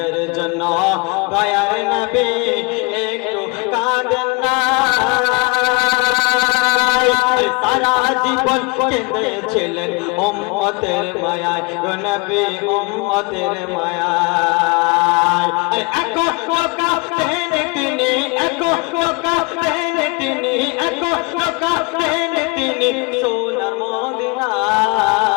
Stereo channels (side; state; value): right; quieter; 28.9 dB